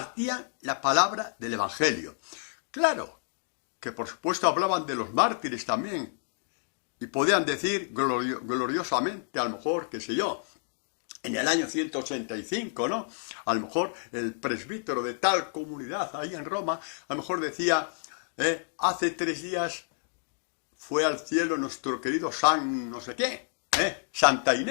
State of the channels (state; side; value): silent; right; digital silence